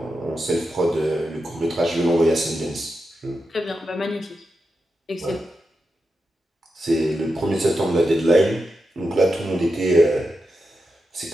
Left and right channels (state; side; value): normal; both; correlation 0.89